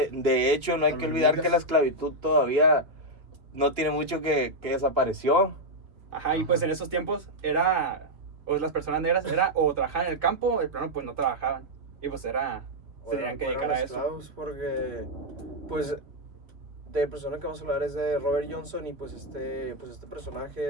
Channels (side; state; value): left; late; 2.8 ms